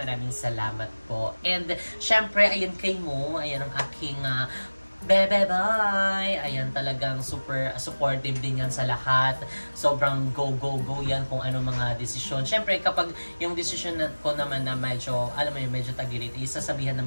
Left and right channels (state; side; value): inverted; both; correlation -1.00